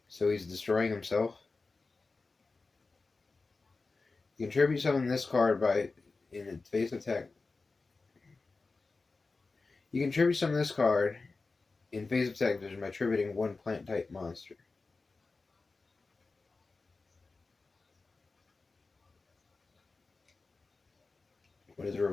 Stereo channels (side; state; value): right; quieter; 3.9 dB